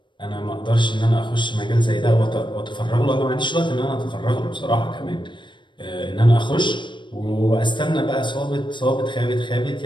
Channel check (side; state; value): right; late; 0.23 ms